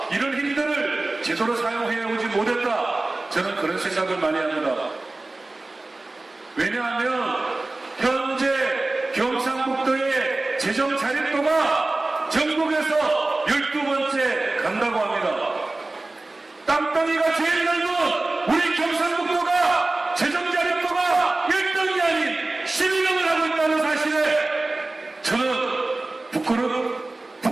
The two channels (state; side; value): quieter; left; 3.0 dB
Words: 이런 힘들을 제대로 사용해오지 못했다. 저는 그런 생각을 많이 합니다. 왜냐하면 현재 경상북도의 재정 자립도가 전국에서 12번째 간다고 합니다. 땅덩이가 제일 넓은 우리 경상북도가 재정 자립도가 1등이 아닌 12등을 하고 있다는 사실에 저는